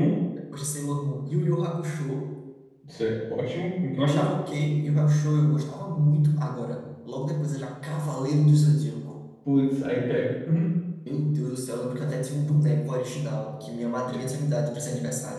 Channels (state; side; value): identical; both; correlation 1.00